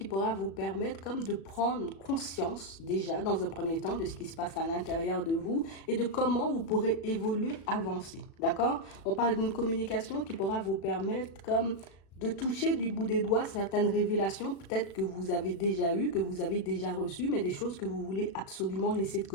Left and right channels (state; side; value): late; right; 36 ms